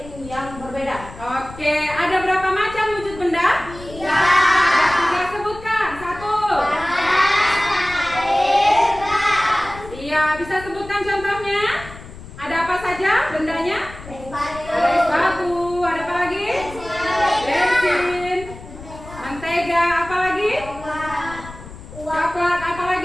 yang berbeda. Oke, ada berapa macam wujud benda? 3. Ada 3, sebutkan. 1. Iya, bisa sebutkan contohnya? Ada apa saja bendanya? Ada es batu, ada apa lagi? Bensin, mentega, apa lagi? Coklat, apa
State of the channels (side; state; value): left; noise; rumble, 15 dB below the sound